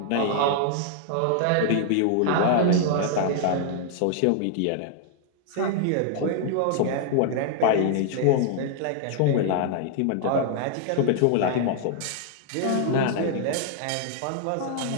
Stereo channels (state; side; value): different; both; correlation -0.01